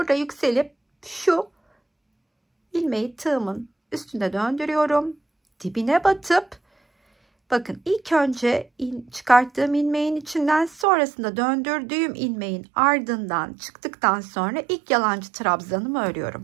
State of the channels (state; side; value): drops out; left; at 10.9 s